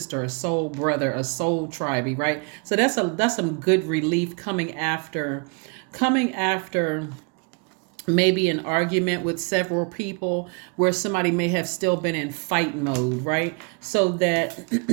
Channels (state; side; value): quieter; left; 34.6 dB